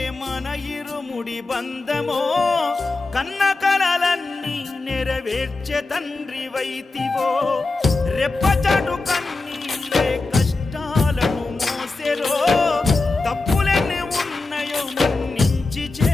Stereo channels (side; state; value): right; quieter; 3.5 dB